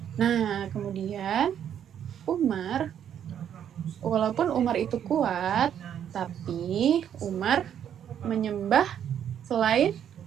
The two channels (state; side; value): quieter; left; 9.3 dB